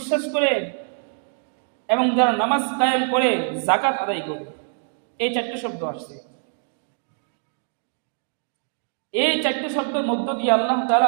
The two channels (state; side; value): silent; left; 63 dB below the other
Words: করে এবং যারা নামাজ কায়েম করে, যাকাত আদায় করে। এই চারটি শব্দ আসছে। এই চারটি শব্দের মধ্য দিয়ে আল্লাহ